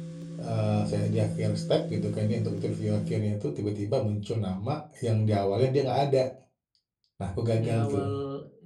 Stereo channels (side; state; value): both; identical; correlation 1.00